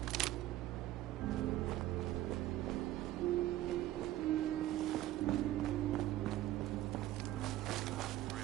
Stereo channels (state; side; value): quieter; left; 14.6 dB